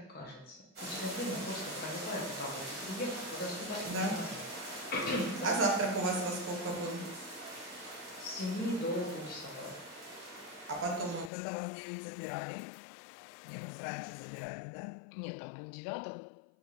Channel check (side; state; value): right; drops out; at 11.3 s